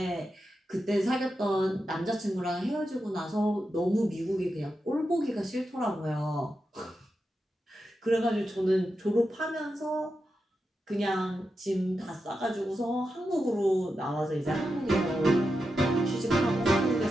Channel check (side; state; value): both; normal; correlation 0.88